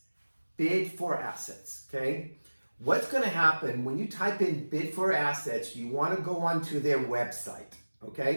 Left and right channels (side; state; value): both; inverted; correlation -1.00